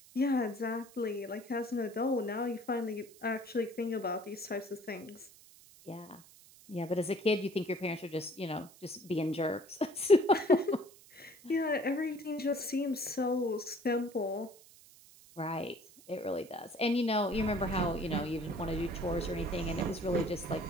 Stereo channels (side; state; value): right; noise; hiss, 23 dB below the sound